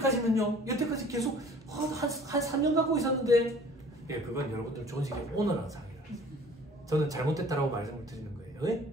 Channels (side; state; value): both; normal; correlation 0.50